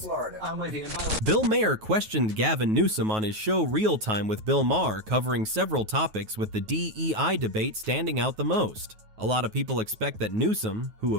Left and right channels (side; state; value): left; late; 9.3 ms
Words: I'm with you. Bill Maher questioned Gavin Newsom on his show Real Time with Bill Maher, covering several topics, with the DEI debate standing out the most. A lot of people expect that Newsom, who